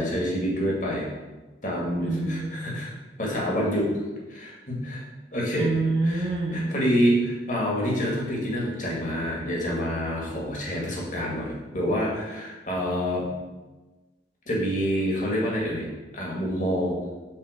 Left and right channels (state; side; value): normal; both; correlation 0.63